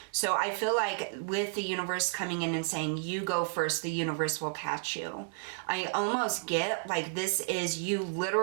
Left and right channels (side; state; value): left; silent; digital silence